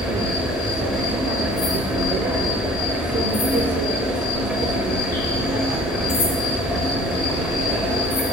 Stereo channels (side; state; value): both; normal; correlation 0.48